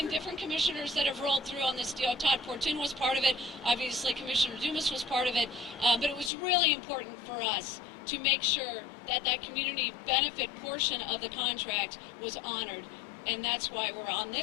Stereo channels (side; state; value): right; drops out; at 6.3 s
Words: different commissioners that have rolled through on this deal. Todd Portun was part of it, obviously Commissioner Dumas was part of it, but it was really important for us to make sure that that community benefit portion of the contract was honored. And that's why we're on